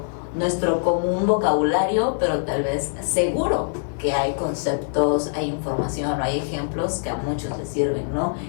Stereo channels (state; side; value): silent; right; 57 dB below the other